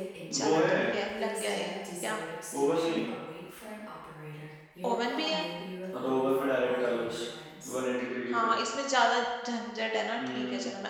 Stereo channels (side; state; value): both; identical; correlation 1.00